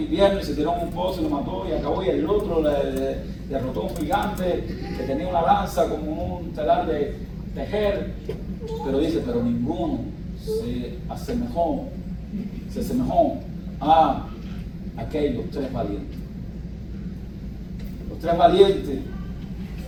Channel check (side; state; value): both; identical; correlation 1.00